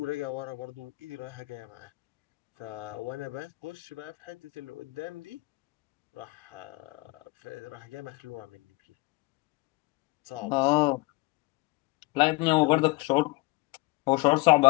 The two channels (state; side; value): quieter; right; 23.4 dB